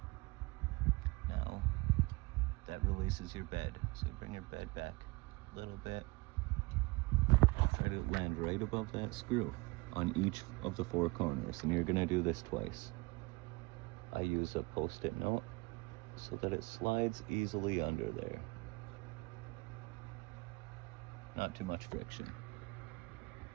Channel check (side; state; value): left; quieter; 24.1 dB